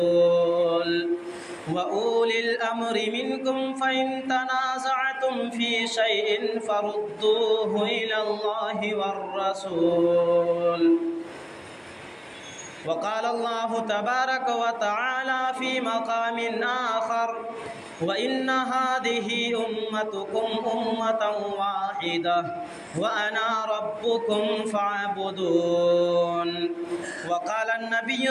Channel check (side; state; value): both; identical; correlation 1.00